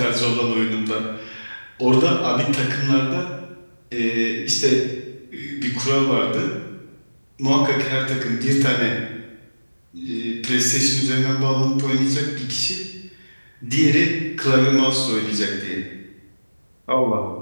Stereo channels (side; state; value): both; inverted; correlation -1.00